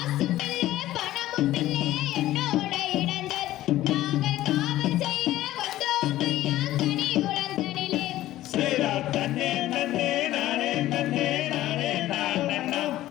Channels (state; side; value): quieter; right; 14.9 dB